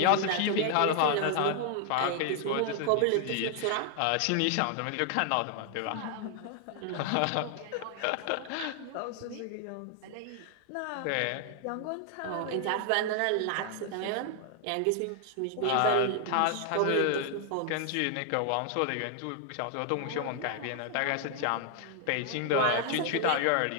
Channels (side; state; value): both; different; correlation 0.00